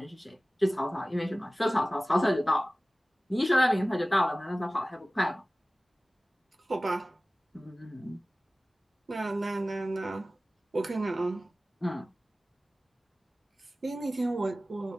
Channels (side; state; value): both; normal; correlation 0.97